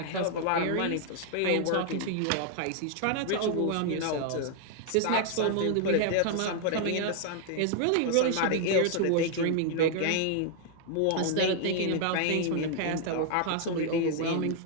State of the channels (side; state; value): both; different; correlation 0.00